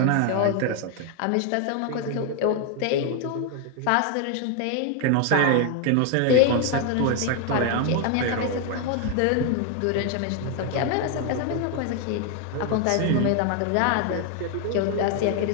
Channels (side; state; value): both; different; correlation 0.01